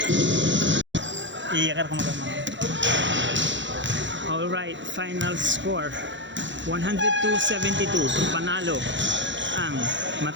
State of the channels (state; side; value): late; left; 0.54 ms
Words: Iyakar ko magaman. All right, final score 102-72. Panalo ang